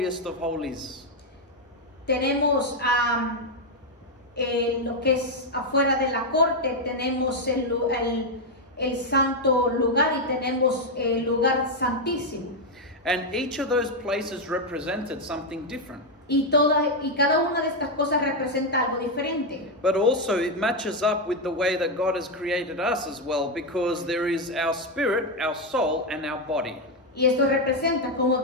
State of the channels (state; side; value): normal; both; correlation 0.03